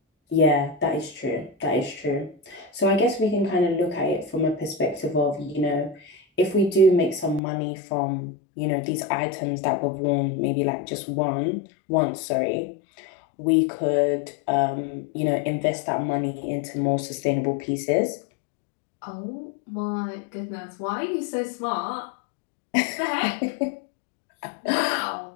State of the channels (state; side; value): drops out; right; at 7.4 s